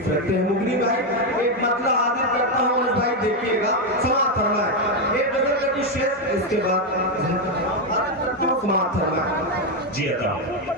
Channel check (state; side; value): normal; both; correlation 0.05